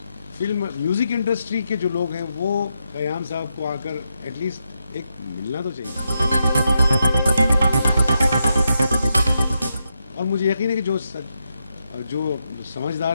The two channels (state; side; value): inverted; both; correlation -0.84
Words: फिल्म म्यूज़िक इंडस्ट्री के जो लोग हैं वो खयाम साहब को आकर एटलीस्ट एक मिलना तो चाहिए। और मुझे यकीन है कि जो